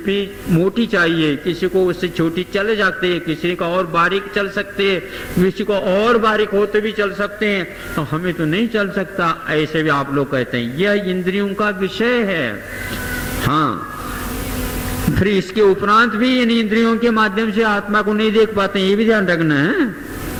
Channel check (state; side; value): identical; both; correlation 1.00